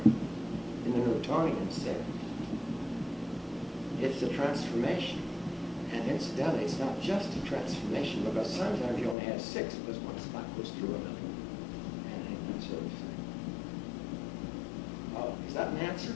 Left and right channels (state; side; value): drops out; right; at 9.2 s